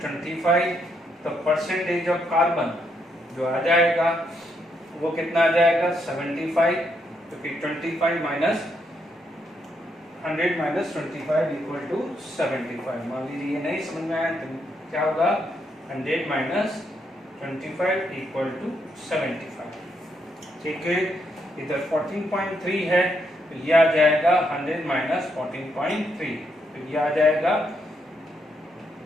तो परसेंटेज ऑफ कार्बन जो आ जाएगा वो कितना आ जाएगा 75, क्योंकि 25 माइनस 100 माइनस 25 इक्वल टू 75। मान लीजिए ये नहीं समझ में आया तो क्या होगा 100 माइनस 25 इक्वल टू 75। ठीक है, इधर 14.3 है तो ये आ जाएगा 100 माइनस 14.3, तो ये आ जाएगा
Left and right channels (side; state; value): both; normal; correlation 0.77